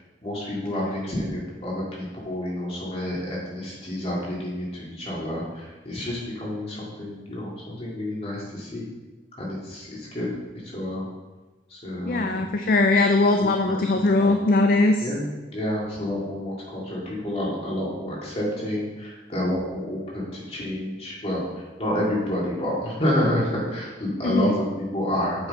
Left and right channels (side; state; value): both; normal; correlation 0.54